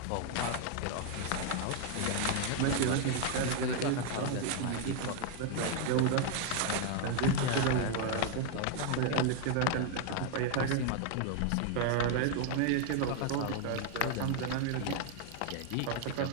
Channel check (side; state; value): both; different; correlation 0.00